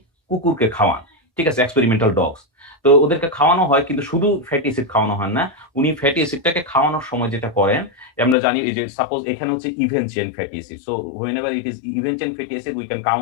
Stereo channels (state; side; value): drops out; right; at 8.3 s